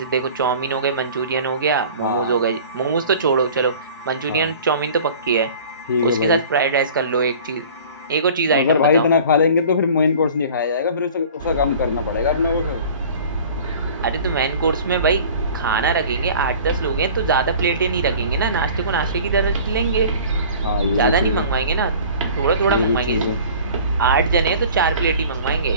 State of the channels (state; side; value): inverted; both; correlation -0.45